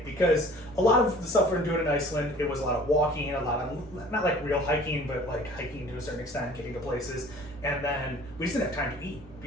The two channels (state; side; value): normal; both; correlation 0.49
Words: because a lot of the stuff we're doing in Iceland, it was a lot of walking, a lot of, not like real hiking, but like hiking to a certain extent, getting to places. And then we just didn't have time to eat,